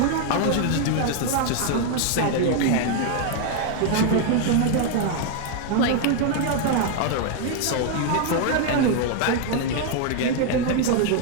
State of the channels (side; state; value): both; different; correlation 0.00